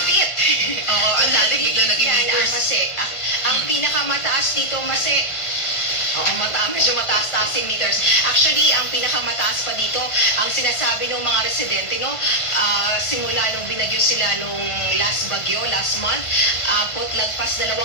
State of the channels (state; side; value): late; right; 1.5 ms